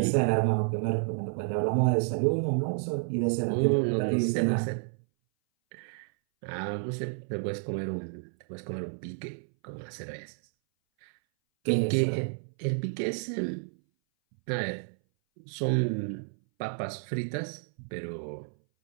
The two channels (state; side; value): silent; left; 58 dB below the other